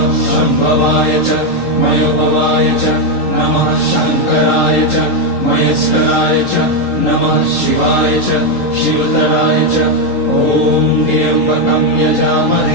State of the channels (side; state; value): right; late; 3.8 ms